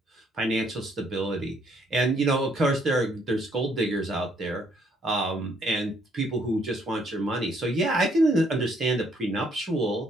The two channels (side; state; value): both; normal; correlation 0.68